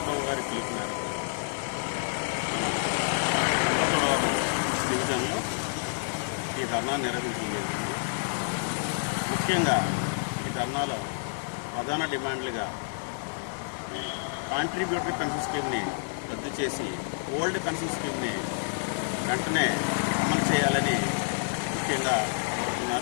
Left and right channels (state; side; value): silent; right; digital silence